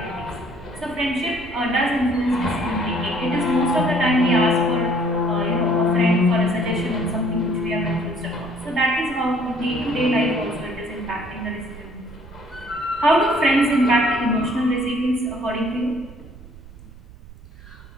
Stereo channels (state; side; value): noise; right; rumble, 19 dB below the sound